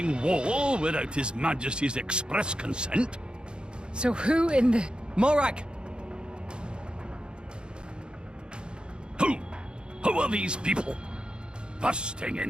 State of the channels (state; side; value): late; left; 0.051 ms